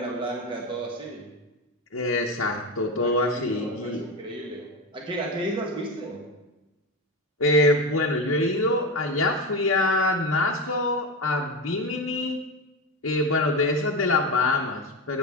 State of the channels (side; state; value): both; normal; correlation 0.17